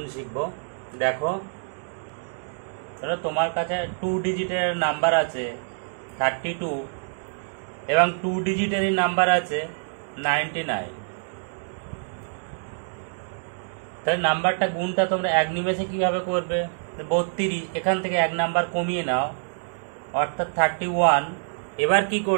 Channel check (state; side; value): silent; left; digital silence